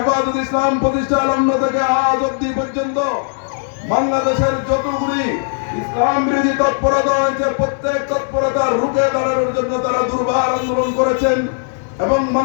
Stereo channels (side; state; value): right; silent; digital silence